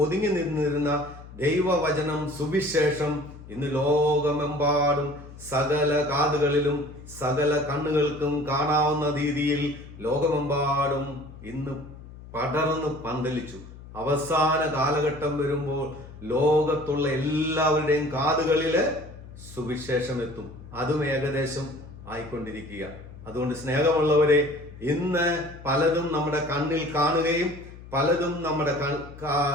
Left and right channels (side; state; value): left; noise; hum, 16 dB below the sound